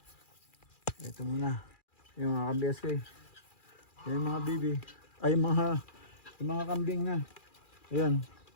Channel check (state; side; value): late; right; 2.4 ms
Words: ito muna yung mga ka-BSK, yung mga bibi ay yung mga kambing na ayan